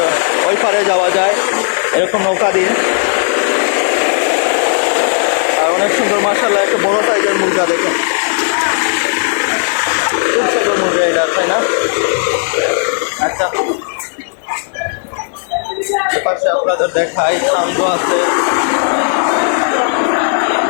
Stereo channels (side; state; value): right; silent; 62 dB below the other